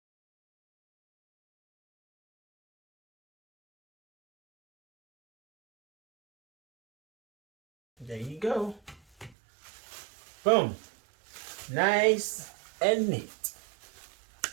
there you go. Boom. Nice and neat.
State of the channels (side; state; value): left; drops out; at 9.3 s